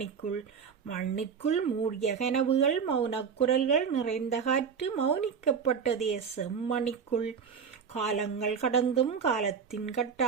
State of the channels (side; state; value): left; quieter; 6.5 dB